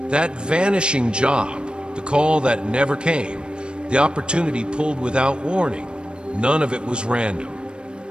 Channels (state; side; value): late; left; 0.054 ms